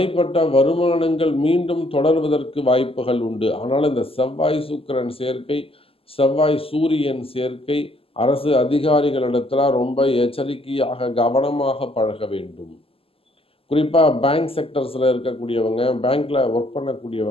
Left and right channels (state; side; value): late; right; 0.27 ms